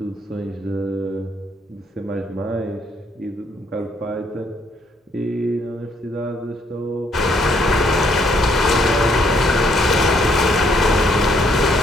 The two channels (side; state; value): both; normal; correlation 0.69